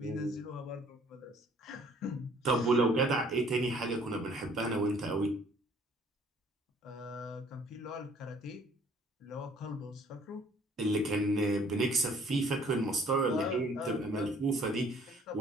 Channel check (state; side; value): normal; both; correlation 0.58